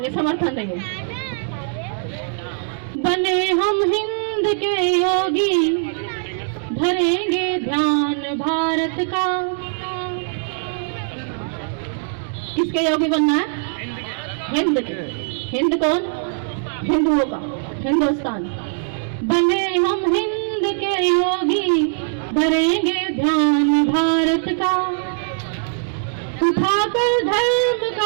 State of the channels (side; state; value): left; silent; digital silence